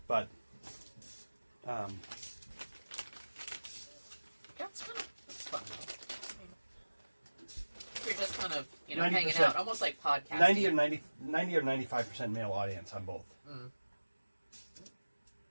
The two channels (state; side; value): inverted; both; correlation -1.00